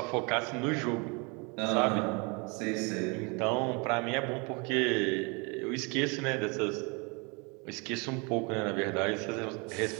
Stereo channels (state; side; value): quieter; left; 30.7 dB